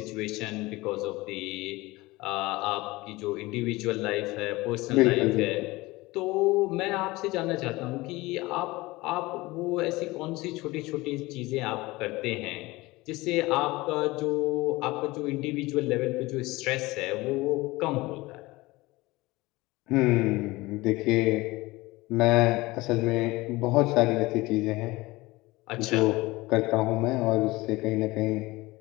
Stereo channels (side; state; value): right; quieter; 20.8 dB